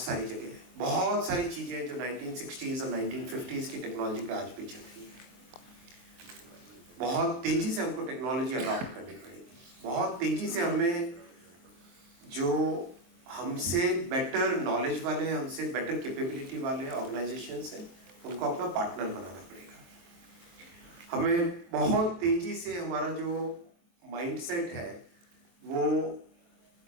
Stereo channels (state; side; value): late; left; 23 ms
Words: सारी जगह, बहुत सारी चीजें जो 1960s और 1950s की टेक्नोलॉजी पे आज भी चल रही है. बहुत तेजी से हमको टेक्नोलॉजी अडॉप्ट करनी पड़ेगी. बहुत तेजी से हमें जो हमसे बेटर नॉलेज वाले, हमसे बेटर कैपेबिलिटी वाले ऑर्गेनाइजेशंस हैं, उनको अपना पार्टनर बनाना पड़ेगा. हमें बहुत तेजी से हमारा जो माइंडसेट है वो